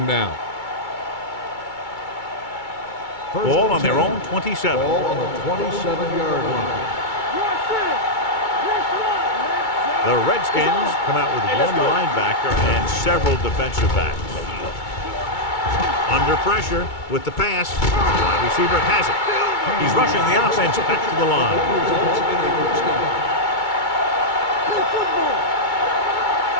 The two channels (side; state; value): right; late; 2.2 ms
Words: down. Ball on their own 27. Ball on the 27-yard line. The Redskins come out with one linebacker and several defensive backs. Under pressure with the pass. Wide receiver has it. He's rushing the offense back to the line.